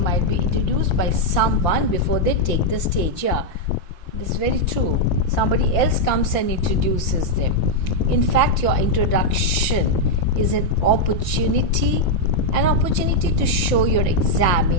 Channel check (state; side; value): late; right; 5.8 ms